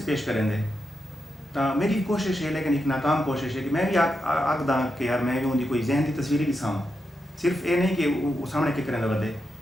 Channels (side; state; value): both; normal; correlation 0.86